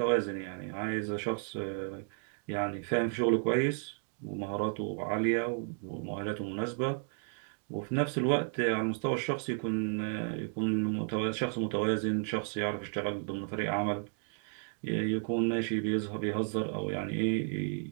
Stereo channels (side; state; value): left; silent; 56 dB below the other